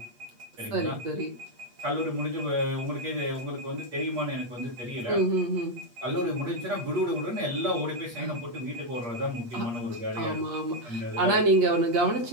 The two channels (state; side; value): late; left; 8.4 ms